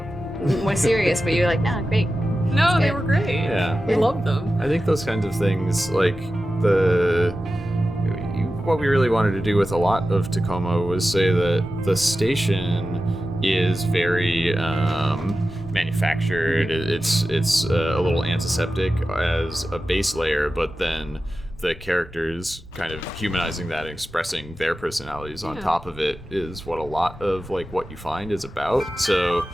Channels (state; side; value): normal; both; correlation 0.93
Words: more serious, but you're like, no, great. No, they were great. Yeah. We loved them. I think those kinds of things, like what we really wanted to do with a lot of Tacoma was say that the station is very manufactured. It's a little antiseptic as a base layer, but then the characters kind of humanizing that and expressing their personalities on top of it is what a lot of like what you find is about. So